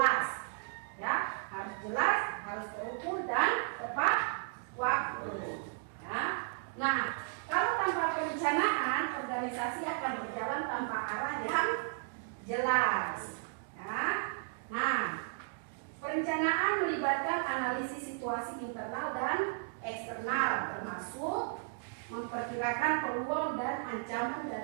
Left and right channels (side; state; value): left; silent; digital silence